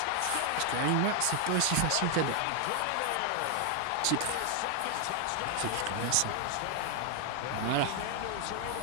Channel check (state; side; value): different; both; correlation 0.00